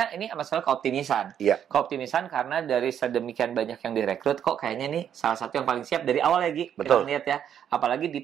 ini masalah keoptimisan. Keoptimisan karena dari sedemikian banyak yang direkrut kok kayaknya nih salah satu yang paling siap dari awal lagi. Kita lihat ya. Apalagi di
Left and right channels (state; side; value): quieter; left; 9.1 dB